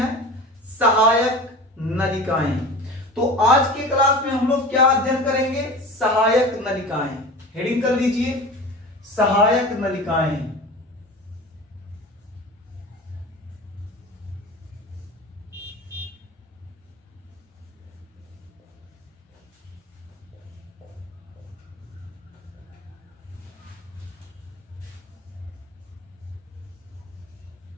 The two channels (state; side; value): normal; both; correlation 0.35